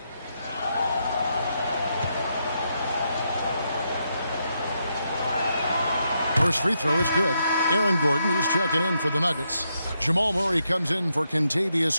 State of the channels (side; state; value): both; inverted; correlation -0.81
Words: First free throw is good. Aaron Gordon, he's checking in for the Nuggets. Jamal Murray comes in for